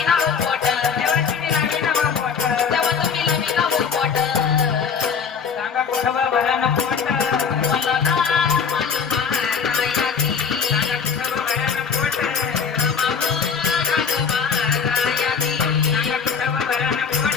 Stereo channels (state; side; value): quieter; right; 6.3 dB